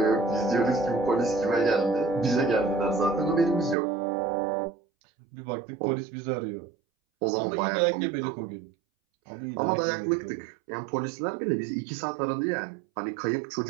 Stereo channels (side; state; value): left; drops out; at 3.8 s